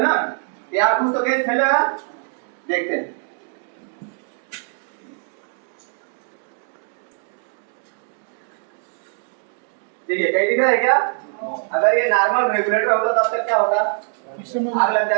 ना, यार कुछ तो गैस फैलेगा, देखते हैं। देखिए, कहीं दिख रहा है क्या? अगर ये नॉर्मल रेगुलेटर होता तब तक क्या होता, आग लग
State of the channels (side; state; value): left; silent; 56 dB below the other